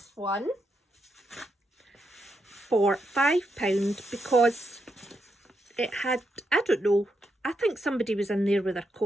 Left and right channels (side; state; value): both; normal; correlation 0.82